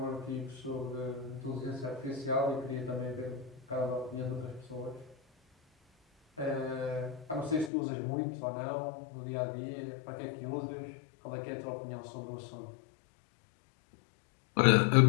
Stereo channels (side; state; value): right; drops out; at 7.7 s